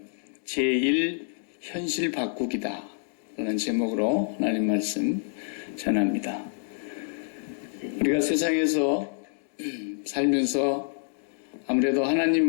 제1 현실 바꾸기다 라는 제목으로 하나님 말씀 전합니다. 우리가 세상에서 살면서 아무래도 하나님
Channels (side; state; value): right; silent; digital silence